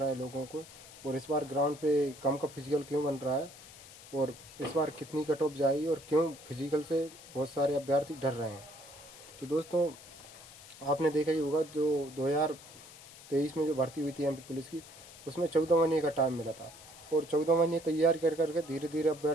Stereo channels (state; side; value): noise; left; hiss, 18 dB below the sound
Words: है लोगों को, और इस बार ग्राउंड पे कम का फिजिकल क्यों बन रहा है, और इस बार कितनी कट ऑफ जाएगी, और क्यों फिजिकल से बहुत सारे अभ्यर्थी डर रहे हैं। तो दोस्तों, आपने देखा ही होगा जो 2023 में जो भर्ती हुई थी एमपी पुलिस की, उसमें 14 महीने का टाइम मिला था, और 14 महीने तैयार कर करके धीरे धीरे